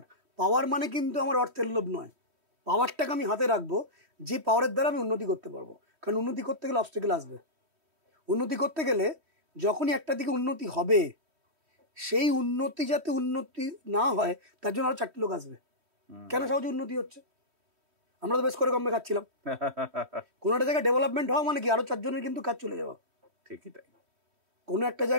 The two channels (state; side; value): late; left; 3.1 ms